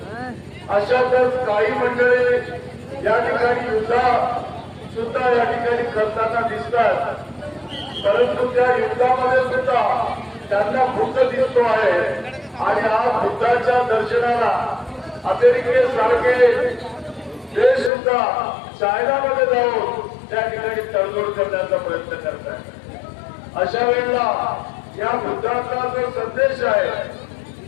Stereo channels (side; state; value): right; drops out; at 17.9 s